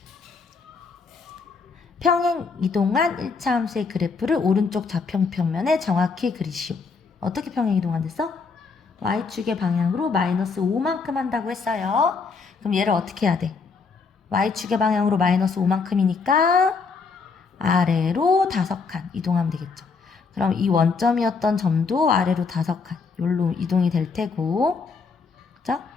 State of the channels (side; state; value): right; quieter; 4.8 dB